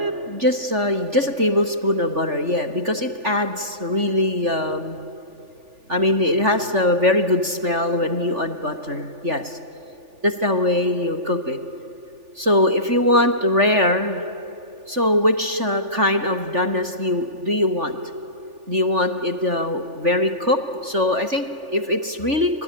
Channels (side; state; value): left; late; 3.4 ms